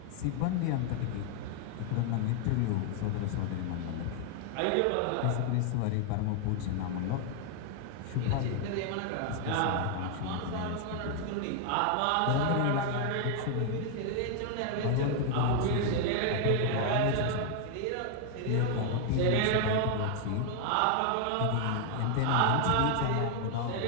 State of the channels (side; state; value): both; different; correlation 0.00